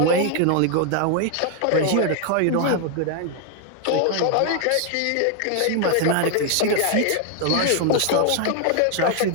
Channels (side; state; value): both; different; correlation 0.00